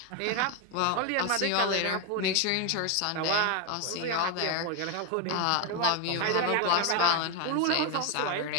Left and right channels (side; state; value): both; different; correlation 0.01